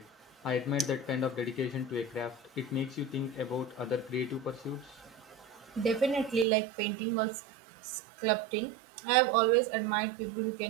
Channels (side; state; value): left; drops out; at 6.5 s